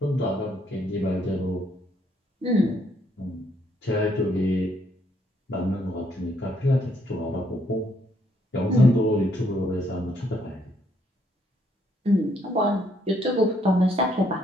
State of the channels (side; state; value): both; normal; correlation 0.71